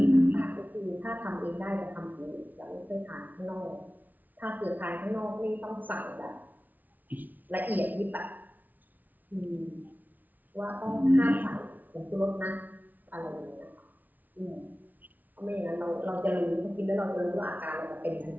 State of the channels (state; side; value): late; left; 0.081 ms